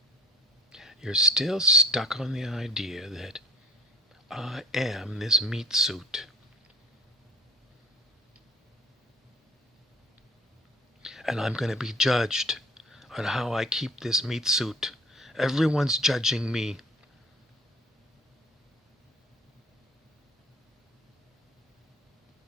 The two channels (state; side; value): normal; both; correlation 0.49